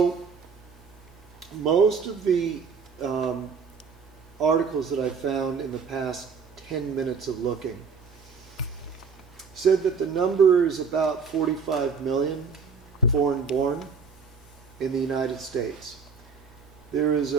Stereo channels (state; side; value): quieter; left; 5.4 dB